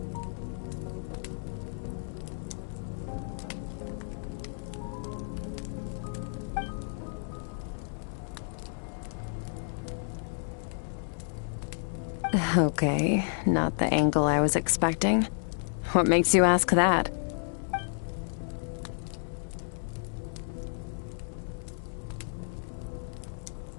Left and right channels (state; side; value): silent; right; digital silence